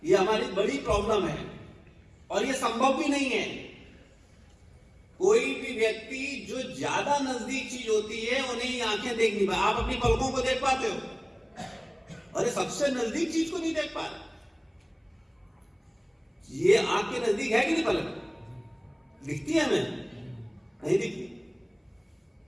ये हमारी बड़ी प्रॉब्लम है और ये संभव भी नहीं है। कोई भी व्यक्ति जो ज्यादा नजदीक चीज होती है उन्हें ही आंखें देख नहीं पाती। आप अपनी पलकों को देख पाते हो? अरे सबसे नजदीक चीज को नहीं देख पा रहे। ये आंख के नजदीक है कि नहीं पलक? दिखती है हमें? नहीं दिखती।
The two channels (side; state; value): both; identical; correlation 1.00